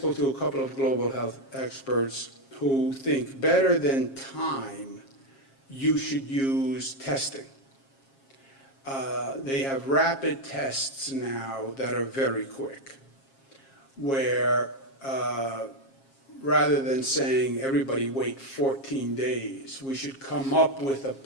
to a couple of global health experts who think better than time, you should use testing. They have rapid tests now that are very quick, where rather than saying everybody wait 14 days, we should come up with a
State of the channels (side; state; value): right; late; 7.4 ms